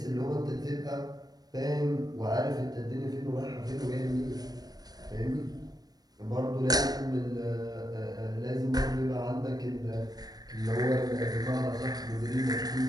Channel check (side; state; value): left; late; 0.19 ms